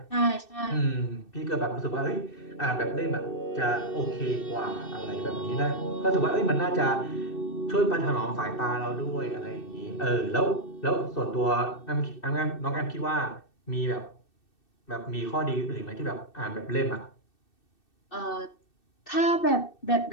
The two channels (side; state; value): right; late; 2.6 ms